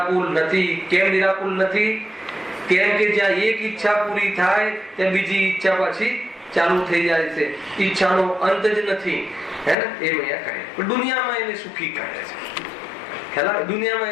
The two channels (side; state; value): right; drops out; at 9.8 s